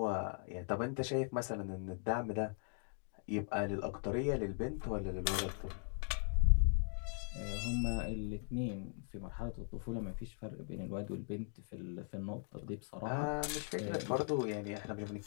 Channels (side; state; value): right; silent; 52 dB below the other